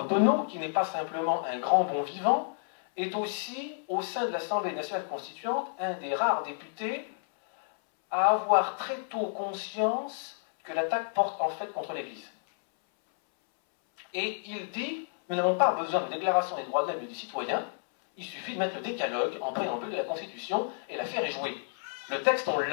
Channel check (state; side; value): silent; right; 58 dB below the other